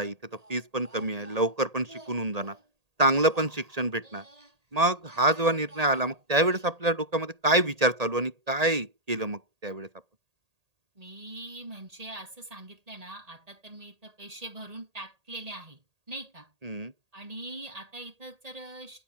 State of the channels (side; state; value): left; late; 1.8 ms